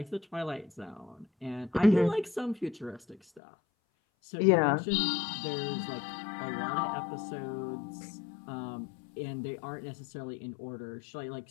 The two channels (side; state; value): right; drops out; at 3.4 s